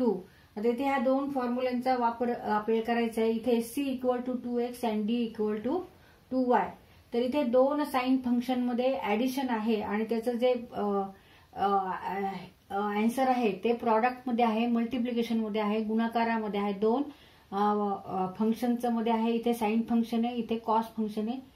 आता इथे ह्या दोन फॉर्म्युलांचा वापर आपल्याला करायचा आहे. इथे c equal to 2x and d equal to 2y. तर इथे दोन साइन फंक्शन मध्ये ऍडिशन आहे आणि त्याचं जे आन्सर आहे ते प्रॉडक्ट मध्ये आहे, मल्टिप्लिकेशन मध्ये आहे, गुणाकारामध्ये आहे. दोन फंक्शनचं मध्ये आहे. इथे साइन फंक्शन आहे, इथे कॉस फंक्शन आहे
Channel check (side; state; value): both; identical; correlation 1.00